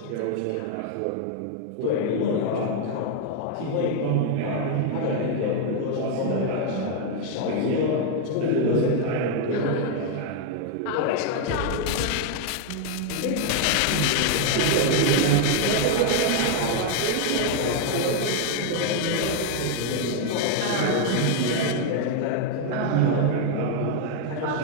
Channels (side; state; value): both; different; correlation 0.00